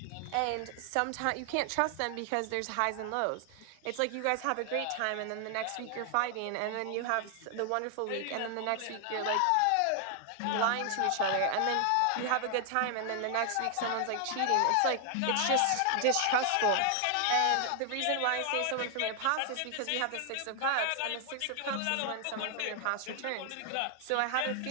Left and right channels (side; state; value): both; different; correlation 0.00